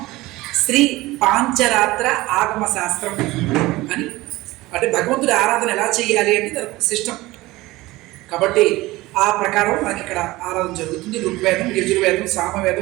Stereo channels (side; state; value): left; quieter; 19.3 dB